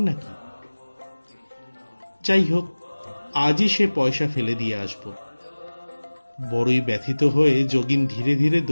নাকি? যাই হোক, আজই সে পয়সা ফেলে দিয়ে আসব। বড়ই ব্যথিত হয়ে যোগিন ধীরে ধীরে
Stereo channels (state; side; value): inverted; both; correlation -1.00